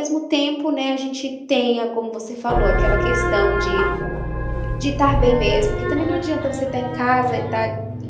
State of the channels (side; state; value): both; identical; correlation 1.00